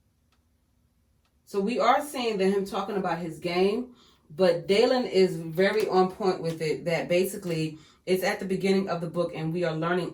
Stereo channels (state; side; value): identical; both; correlation 1.00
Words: So we are seeing that him talking about his game, But Dalen is very on point with it, that basically it's at the beginning of the book and we are learning